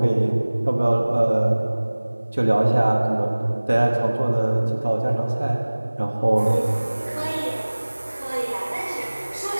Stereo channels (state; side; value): inverted; both; correlation -1.00